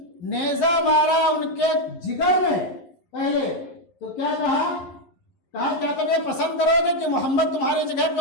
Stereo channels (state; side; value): late; right; 11 ms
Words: نیزہ مارا ان کے جگر میں پہلے تو کیا کہا کیا تم یہ پسند کرو گے کہ محمد تمہاری جگہ پہ